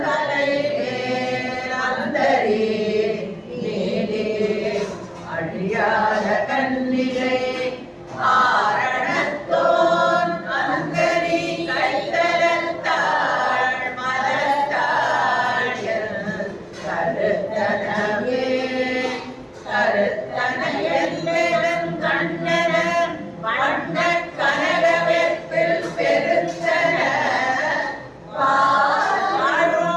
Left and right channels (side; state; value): both; identical; correlation 1.00